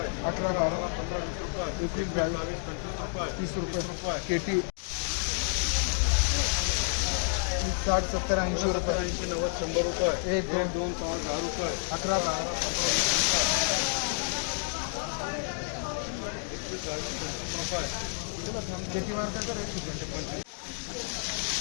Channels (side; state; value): right; silent; 58 dB below the other